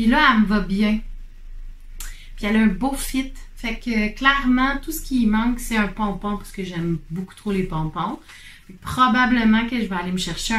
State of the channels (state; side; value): identical; both; correlation 1.00